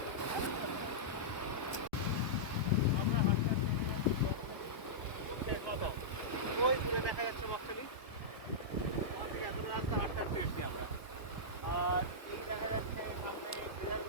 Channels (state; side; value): late; right; 1.2 ms